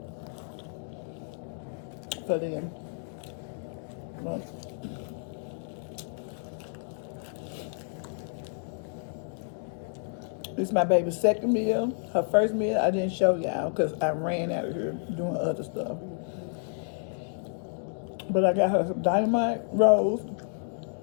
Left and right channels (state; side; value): silent; right; digital silence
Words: For them. But this is my baby's second meal. Her first meal I didn't show y'all because I ran out of here doing other stuff. But I got her some dynamite rolls.